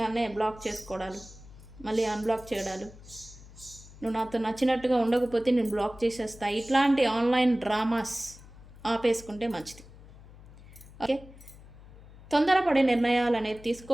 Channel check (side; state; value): left; noise; hum, 20 dB below the sound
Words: బ్లాక్ చేసుకోవడాలు, మళ్ళీ అన్బ్లాక్ చేయడాలు, నువ్వు నాతో నచ్చినట్టుగా ఉండకపోతే నేను బ్లాక్ చేసేస్తా, ఇట్లాంటి ఆన్లైన్ డ్రామాస్ ఆపేసుకుంటే మంచిది. ఓకే, తొందరపడే నిర్ణయాలు అనేది